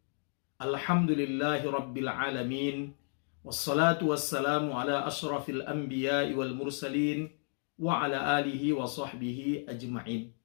Alhamdulillahi rabbil alamin. Wassalatu wassalamu ala ashrafil anbiya'i wal mursalin wa ala alihi wa sahbihi ajma'in.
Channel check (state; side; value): silent; right; 56 dB below the other